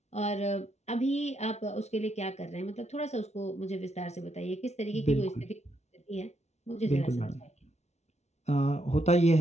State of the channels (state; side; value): late; right; 0.32 ms